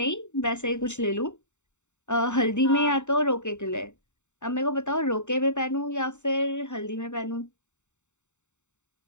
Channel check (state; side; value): late; right; 0.84 ms